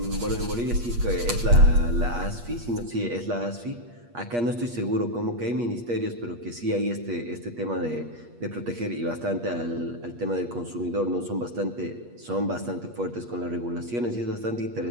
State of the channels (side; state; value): left; late; 8.4 ms